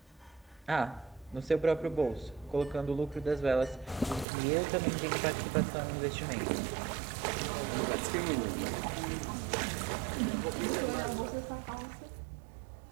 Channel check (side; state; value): left; drops out; at 4.2 s